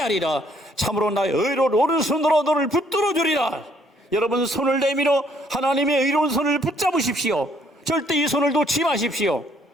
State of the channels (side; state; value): both; normal; correlation 0.66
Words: 참으로 나의 의로운 오른손으로 너를 붙들어 주리라. 여러분, 손을 내밀어 하나님의 의로운 손을 붙잡으십시오. 절대 이 손을 놓지 마십시오.